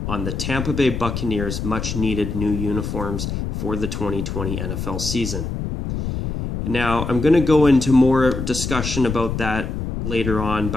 on the Tampa Bay Buccaneers' much-needed new uniforms for the 2020 NFL season. Now, I'm going to go into more discussion about that later on,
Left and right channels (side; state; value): left; noise; rumble, 4 dB below the sound